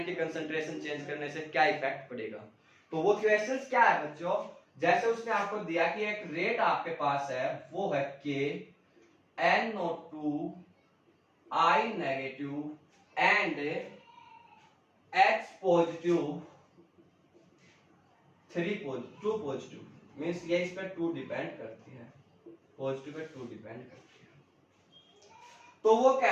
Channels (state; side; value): identical; both; correlation 1.00